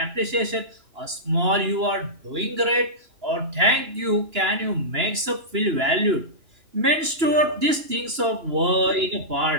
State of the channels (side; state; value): left; late; 2.9 ms